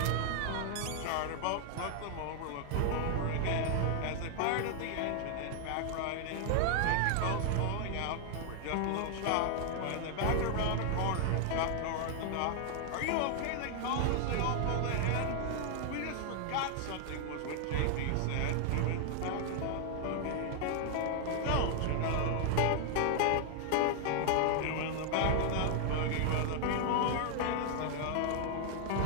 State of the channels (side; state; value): both; different; correlation 0.00